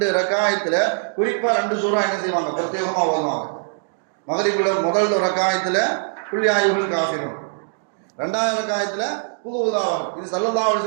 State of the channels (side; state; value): left; silent; digital silence